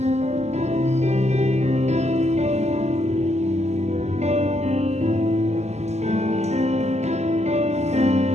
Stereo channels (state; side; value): late; left; 0.32 ms